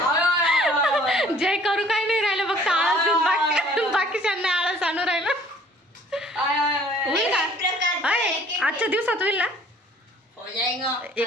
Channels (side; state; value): both; normal; correlation 0.55